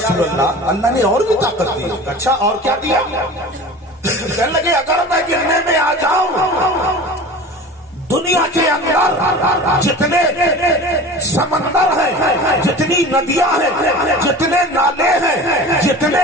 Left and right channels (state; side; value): normal; both; correlation 0.36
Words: اللہ، اللہ نے اور بھی طاقت دی ہے۔ اچھا اور کیا دیا؟ کہنے لگے اگر میں گرنے میں آ جاؤں دنیا کے اندر جتنے سمندر ہیں، جتنی ندیاں ہیں، جتنے نالے ہیں، جتنے